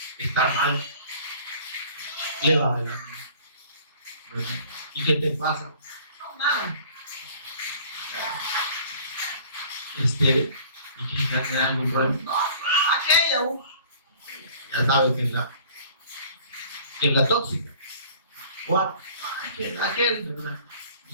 Estar mal le va el ánimo. ¿Y qué te pasa? No, nada. ¿Y que tiene algún problema? No, aquella, ya sabes que es la tóxica. O aquel, ¿verdad?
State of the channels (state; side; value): inverted; both; correlation -0.50